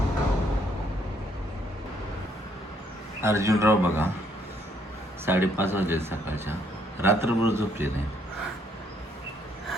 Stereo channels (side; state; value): both; normal; correlation 0.69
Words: अर्जुनराव बघा 5:30 वाजले सकाळच्या. रात्रभर झोपले नाही.